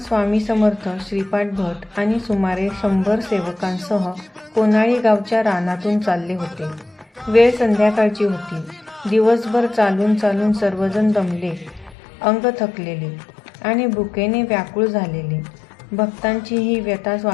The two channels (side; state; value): right; drops out; at 12.0 s